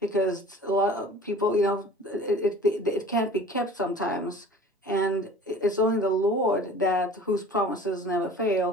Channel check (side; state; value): both; normal; correlation 0.45